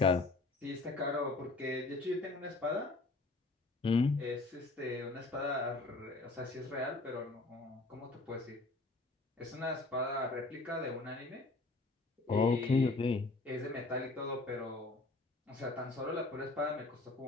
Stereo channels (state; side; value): quieter; right; 3.3 dB